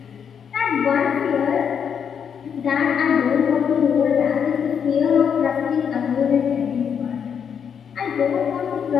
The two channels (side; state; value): right; quieter; 7.5 dB